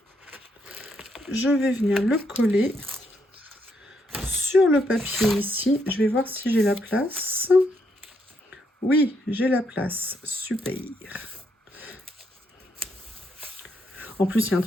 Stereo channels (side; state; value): both; normal; correlation 0.76